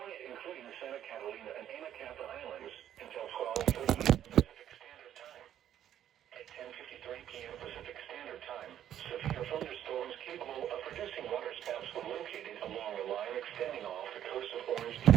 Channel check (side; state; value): left; quieter; 10.8 dB